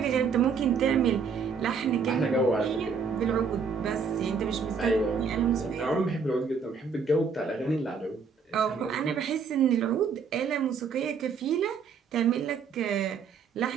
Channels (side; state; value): left; quieter; 5.7 dB